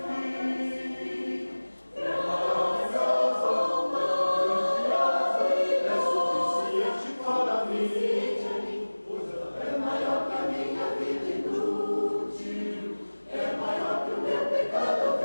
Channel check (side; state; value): both; inverted; correlation -1.00